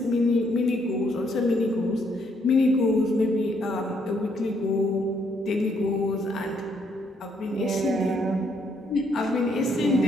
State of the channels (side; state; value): both; normal; correlation 0.71